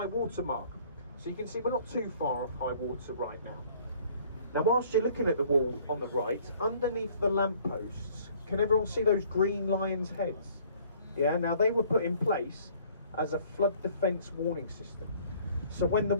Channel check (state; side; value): inverted; both; correlation -0.56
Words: water mark. So you can see we're not too far off high water right now. Now, whilst you're looking at the wall on the right, underneath the lampposts, can everyone see those green lions' heads? Yeah, now they were put in place as a flood defence warning system. So when the